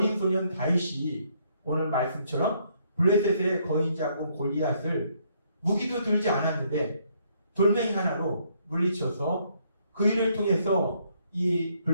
소년 다윗이 오늘 말씀처럼 블레셋의 거인 장군 골리앗을 무기도 들지 않았는데 돌멩이 하나로 물리쳐서 그 일을 통해서 이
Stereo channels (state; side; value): inverted; both; correlation -0.70